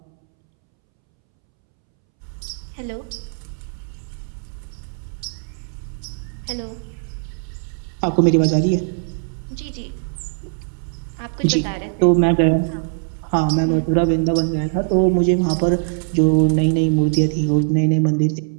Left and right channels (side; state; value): left; silent; 65 dB below the other